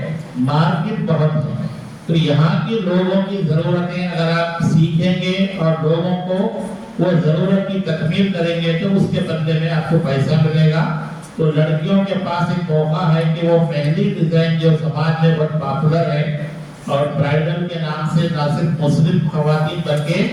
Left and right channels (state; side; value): identical; both; correlation 1.00